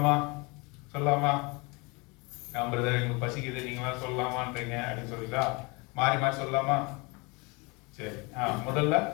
பிரதர் எங்களுக்கு பசிக்குது, நீங்களா சொல்லலாமான்றீங்க அப்படின்னு சொல்லிட்டா மாறி சொல்லலாமா? சரி. முதல்ல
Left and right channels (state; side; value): quieter; right; 28.0 dB